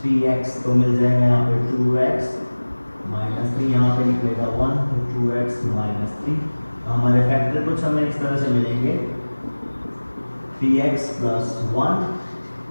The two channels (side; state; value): both; inverted; correlation -1.00